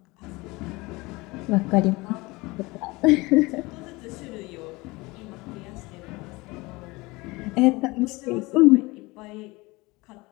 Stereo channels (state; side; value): quieter; right; 22.9 dB